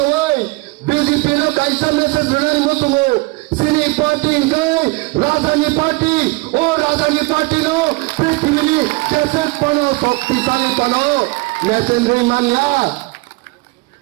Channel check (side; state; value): left; quieter; 25.1 dB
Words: BJP নো কাইসা মেসেজ বেনানি মসুনু Sini party kai Rajani party Rajani party no Prithivini Jaset pano Shaktisali pano Mesendri mania